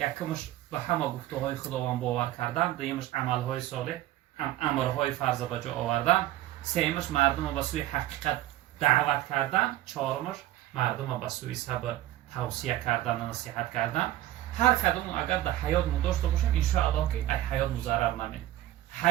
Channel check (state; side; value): quieter; left; 14.6 dB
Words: به همه گفته‌های خداوند باور کردن، دومش عمل‌های صالح، امرهای فرض به جا آوردن، سومش مردم رو به سوی حقیقت دعوت کردن، چهارمش مردم رو به سوی صبر توصیه کردن و نصیحت کردن. هر کدوم اگر در حیات مو داشته باشیم ان شاء الله که ای حیات مو ضرر نمید،